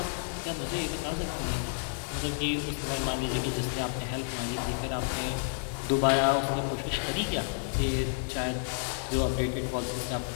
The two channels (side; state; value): right; silent; digital silence